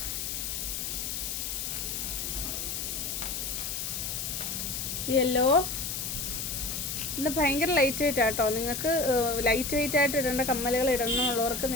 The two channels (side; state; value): left; noise; hiss, 3 dB below the sound